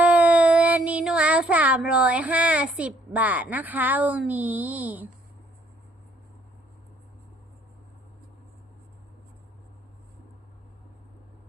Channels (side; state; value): both; normal; correlation 0.65